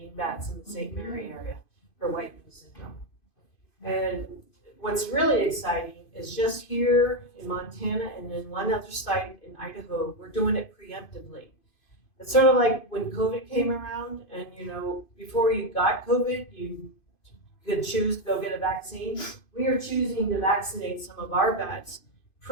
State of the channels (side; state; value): right; late; 2.5 ms